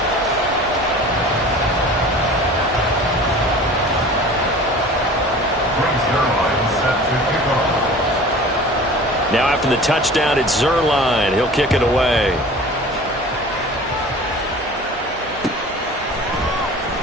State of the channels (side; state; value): both; normal; correlation 0.42